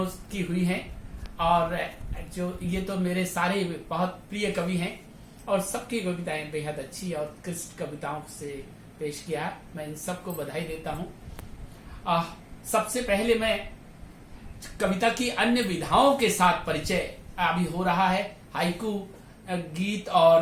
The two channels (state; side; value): identical; both; correlation 1.00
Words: की हुई हैं। और जो ये तो मेरे सारे बहुत प्रिय कवि हैं और सबकी कविताएं बेहद अच्छी और उत्कृष्ट कविताओं से पेश किया। मैं इन सबको बधाई देता हूं। सबसे पहले मैं कविता की अन्य विधाओं के साथ परिचय अभी हो रहा है। हाइकू गीत